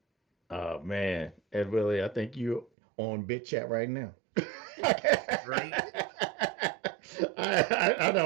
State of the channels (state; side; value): drops out; left; at 2.7 s